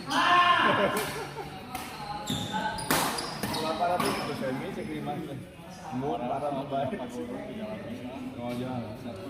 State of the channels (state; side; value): identical; both; correlation 1.00